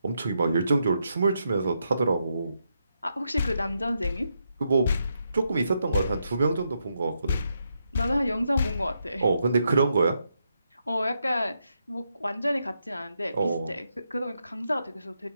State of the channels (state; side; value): inverted; both; correlation -0.81